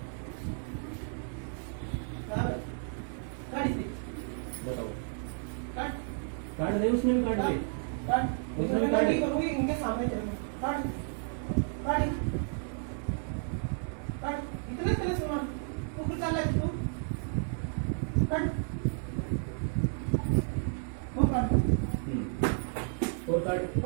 गाड़ी से बताओ, काट काट दे, उसने भी काट दे, काट उसने भी गाड़ी करूंगी इनके सामने चलूंगी काट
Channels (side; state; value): left; silent; 56 dB below the other